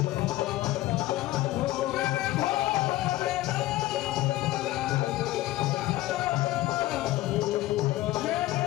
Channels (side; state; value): right; quieter; 16.6 dB